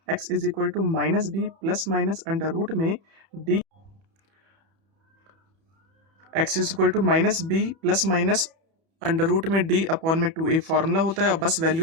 x is equal to minus B plus minus under root में D, x is equal to minus B plus minus under root में डी अपॉन में 2a फॉर्मूला होता है, और बस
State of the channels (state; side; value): late; left; 31 ms